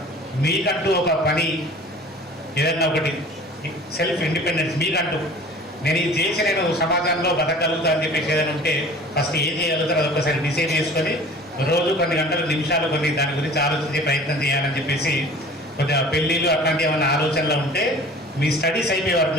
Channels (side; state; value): both; normal; correlation 0.44